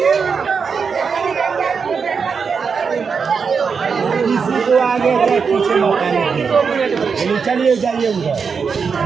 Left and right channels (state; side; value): quieter; left; 5.7 dB